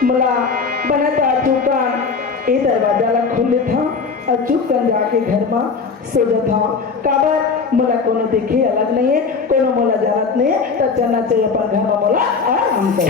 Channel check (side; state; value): right; quieter; 5.1 dB